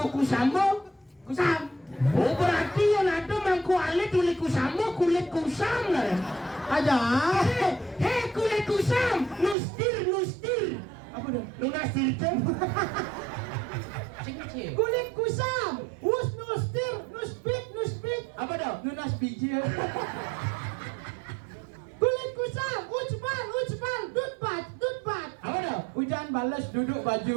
kusamo? Kusam. Oh berarti yang ada mangku alit kulit kusamo kulit kusam lah. aja. Hei kulit kusam, nustir. Apa dah? Nunastir itu. Cing-cing. Kulit kusam. Nuspit. Apa dah? Nunas biji. Kulit kusam. Ucpal. Dutbat. Apa dah? Hujan balas duduk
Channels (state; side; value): drops out; left; at 9.6 s